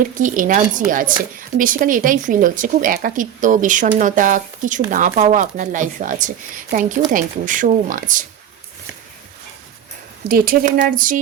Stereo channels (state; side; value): quieter; left; 9.7 dB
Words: কি এনার্জি আছে, বেসিক্যালি এটাই ফিল হচ্ছে, খুব একাকিত্ব বিষণ্ণতা, কিছু না পাওয়া আপনার লাইফে আছে। Thank you so much. ডেটের এনার্জি,